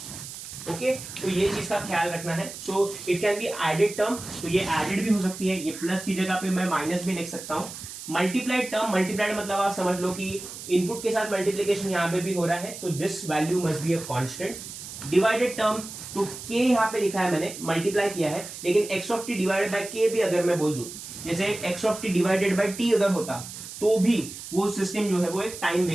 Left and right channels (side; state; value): right; noise; hiss, 11 dB below the sound